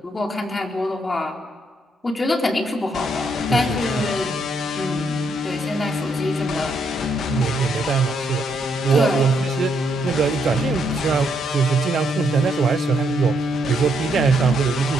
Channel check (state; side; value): normal; both; correlation 0.75